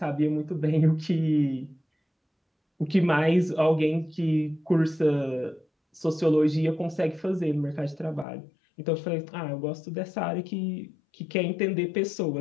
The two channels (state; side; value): drops out; right; at 8.2 s